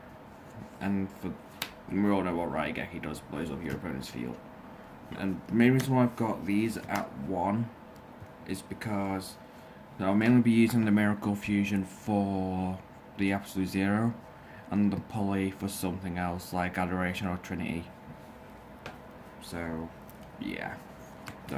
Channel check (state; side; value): identical; both; correlation 1.00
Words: And we all know what Raigeki does, blows up your opponent's field. And the main reason why I've got these at 1 is because I'll mainly be using the Miracle Fusion for the Absolute Zero, and the Poly for something else like Adoration or Trinity. So, yeah,